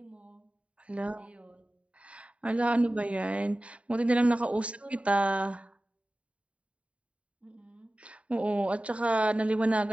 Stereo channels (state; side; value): late; left; 0.064 ms